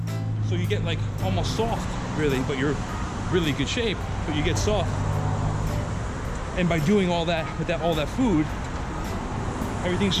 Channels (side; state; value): both; identical; correlation 1.00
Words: So you get like almost soft, really, but you're really good shape, but you get soft. And by doing all that with all that food, everything's